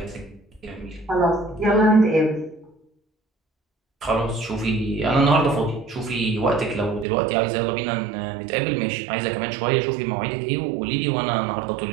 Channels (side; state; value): left; drops out; at 7.1 s